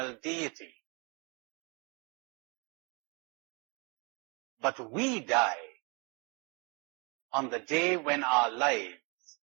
deity. But we die on the day when our lives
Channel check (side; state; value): left; quieter; 31.8 dB